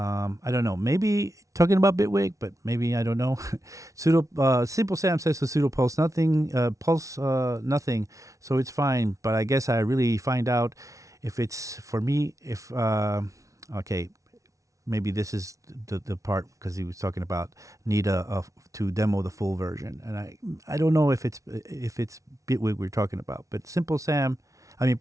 don't know. Maybe talking about Bitwig, but maybe I don't know. Simple Sam says to Pseudopulse, nothing. Pulse, nothing. So it's fine. But I guess I really find out if it's for me. If okay, maybe this is the part because he was talking about need to demo the full version, and I don't know if it's Bitwig we're talking about. But Simple Sam.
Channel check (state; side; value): late; left; 0.16 ms